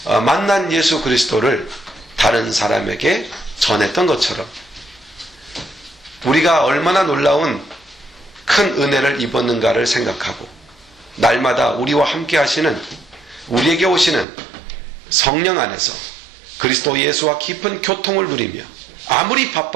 만난 예수 그리스도를 다른 사람에게 전했던 것처럼 우리가 얼마나 놀라운 큰 은혜를 입었는가를 생각하고 날마다 우리와 함께 하시는 우리에게 오시는 성령 안에서 그리스도 예수와 깊은 교통을 누리며 아무리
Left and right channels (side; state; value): left; drops out; at 14.2 s